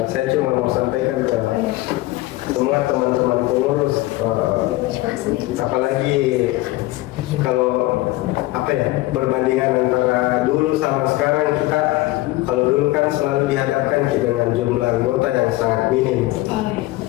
saya cuma mau sampaikan ke semua teman-teman pengurus, apalagi kalau perbandingan antara dulu sama sekarang, kita kalau dulu kan selalu dihadapkan dengan jumlah anggota yang sangat minim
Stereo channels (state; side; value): quieter; right; 18.5 dB